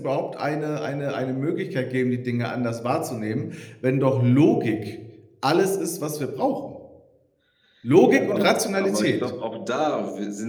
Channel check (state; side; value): identical; both; correlation 1.00